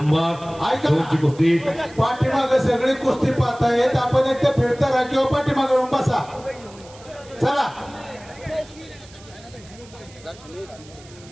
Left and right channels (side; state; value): right; noise; hiss, 23 dB below the sound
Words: 2 ची कुस्ती. पाठीमागे सगळी कुस्ती पाहतायत. आपण एक तर फिरता राहा किंवा पाठीमागे येऊन बसा. चला